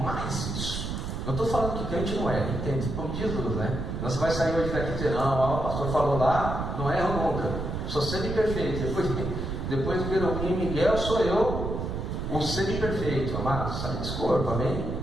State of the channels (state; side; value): noise; right; rumble, 4 dB below the sound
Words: isso. Não estou falando que crente não é, entende? Como diz Jesus, né? Você vai sair hoje daqui e dizer: não, o pastor falou lá, não erro nunca, sou semi-perfeito. Depois do Querubim Miguel, sou eu o semi-perfeito. Amado, sai desse corpo, amém?